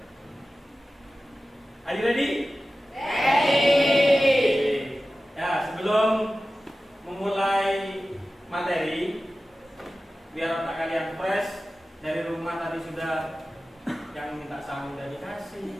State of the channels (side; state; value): both; normal; correlation 0.95